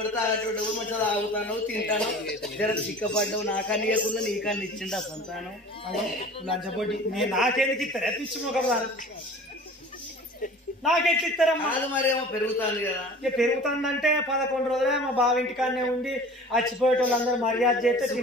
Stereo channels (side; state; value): both; normal; correlation 0.42